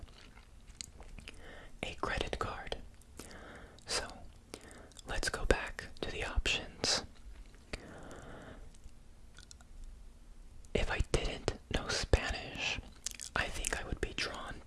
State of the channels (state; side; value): identical; both; correlation 1.00